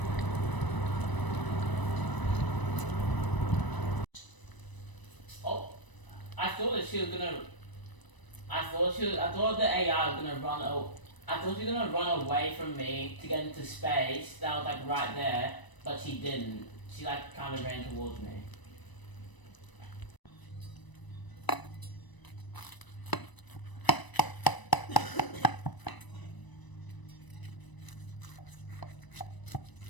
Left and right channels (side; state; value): right; late; 1.0 ms